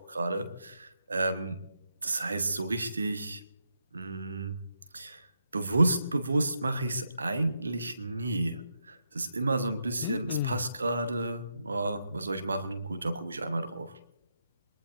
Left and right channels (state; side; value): inverted; both; correlation -0.82